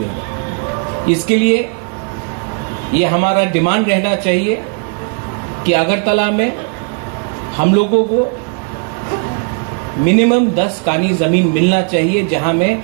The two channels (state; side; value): quieter; left; 38.0 dB